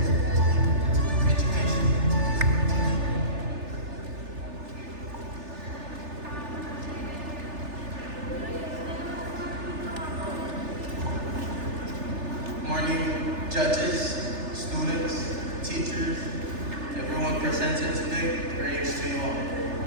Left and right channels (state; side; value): late; left; 3.4 ms